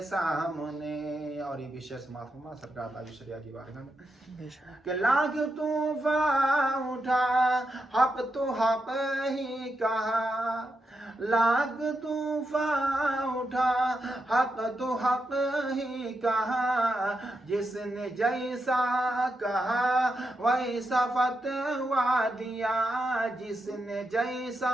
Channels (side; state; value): both; normal; correlation 0.85